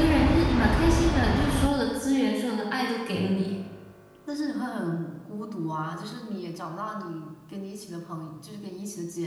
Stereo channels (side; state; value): both; identical; correlation 1.00